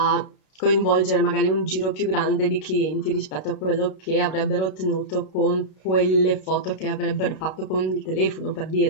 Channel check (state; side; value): late; right; 32 ms